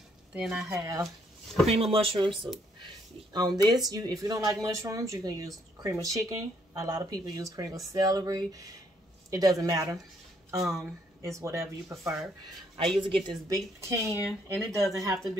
then I have cream of mushroom soup. On this, if you don't like mushrooms, you can use cream of chicken. A lot of people use cream of celery. It doesn't matter. It's whatever you prefer. I usually get this big can, and it doesn't have to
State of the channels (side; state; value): both; normal; correlation 0.70